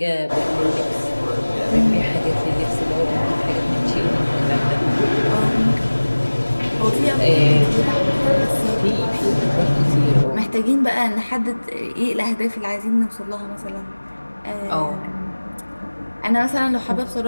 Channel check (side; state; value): both; inverted; correlation -1.00